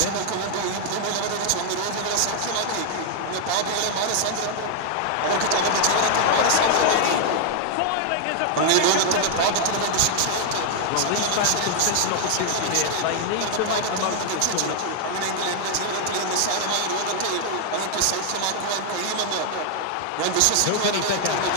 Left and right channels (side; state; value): both; different; correlation 0.00